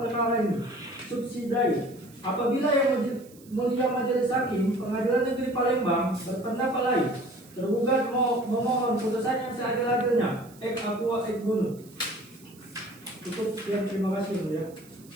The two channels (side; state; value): right; noise; hiss, 25 dB below the sound